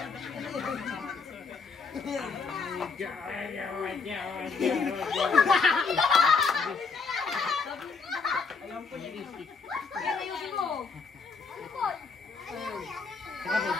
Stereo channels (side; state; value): right; quieter; 4.9 dB